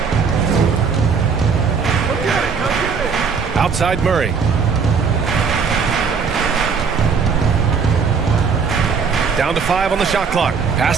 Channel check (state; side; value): quieter; left; 5.6 dB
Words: Outside Murray. Down to 5 on the shot clock. Pass